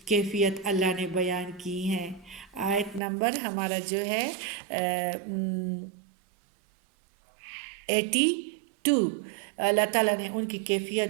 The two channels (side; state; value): left; drops out; at 3.0 s